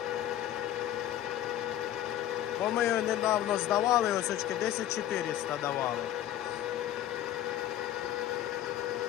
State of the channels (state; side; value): quieter; right; 12.2 dB